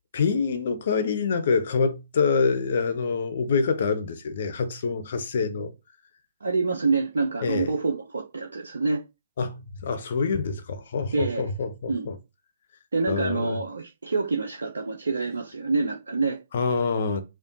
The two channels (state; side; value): inverted; both; correlation -0.72